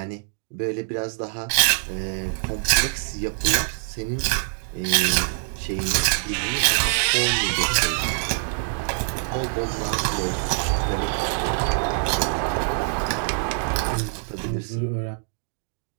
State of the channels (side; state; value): left; silent; digital silence